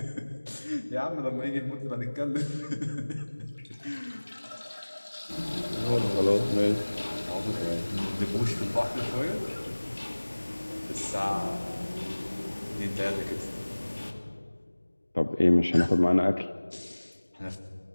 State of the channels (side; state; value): both; inverted; correlation -1.00